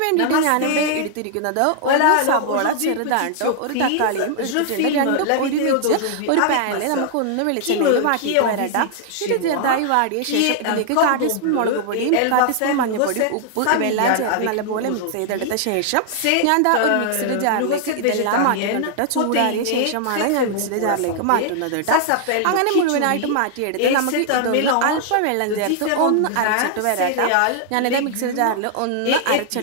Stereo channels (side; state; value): both; different; correlation -0.01